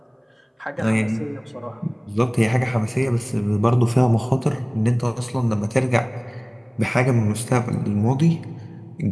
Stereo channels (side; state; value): both; identical; correlation 1.00